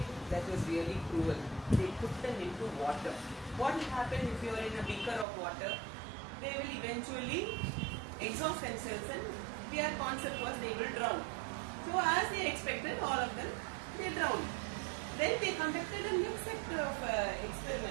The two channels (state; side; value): drops out; left; at 5.2 s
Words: that was really cruel. They put them into water. What will happen if you are in a beaker of water? They will eventually exhaust themselves, and their concept was they will drown. So as they expected, all of them, they drowned. Then they conducted a next sector of